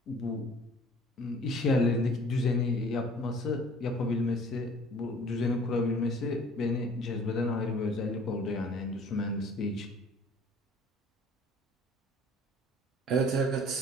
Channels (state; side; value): normal; both; correlation 0.51